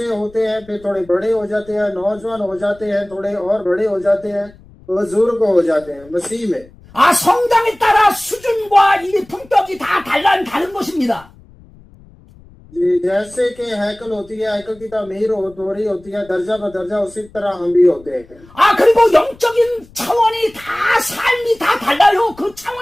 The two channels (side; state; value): left; noise; rumble, 25 dB below the sound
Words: होते हैं, फिर थोड़े बड़े हो जाते हैं, नौजवान हो जाते हैं, थोड़े और बड़े हो जाते हैं, बुजुर्ग हो जाते हैं मसीह में। 아, 성장에 따라 수준과 이 품격이 다 다른 것입니다. जी, जैसे कि हैकल होती है, हैकल की तामीर हो रही होती है दर्जा ब दर्जा, उसी तरह हम भी होते हैं। 아, 그리고 영적인 차원이 다 삶이 다 달라요. 그